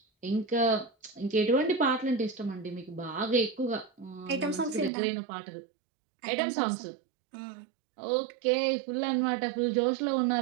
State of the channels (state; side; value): drops out; left; at 4.9 s